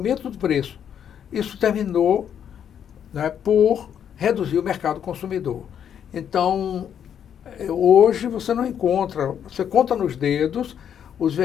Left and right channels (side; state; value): right; quieter; 8.8 dB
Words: do preço. Isso terminou, né, por reduzir o mercado consumidor. Então, hoje você não encontra, você conta nos dedos os